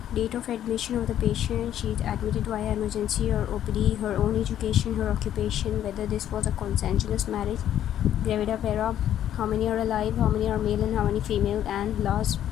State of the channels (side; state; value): right; quieter; 11.0 dB